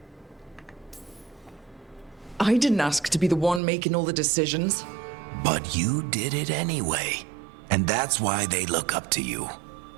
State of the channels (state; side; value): drops out; left; at 3.6 s